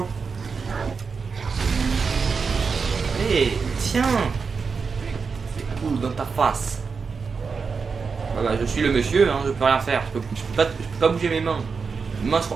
Eh, tiens. C'est cool dans ta face. Bah, je suis le monsieur, hein, je peux rien faire. Je peux pas bouger mes mains.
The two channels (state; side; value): quieter; left; 5.2 dB